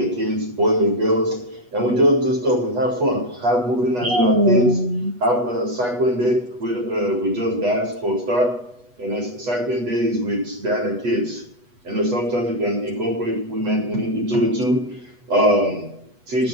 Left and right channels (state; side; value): late; left; 8.2 ms